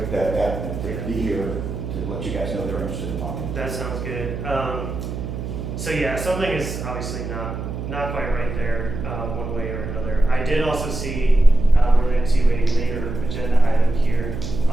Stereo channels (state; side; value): noise; right; hum, 6 dB below the sound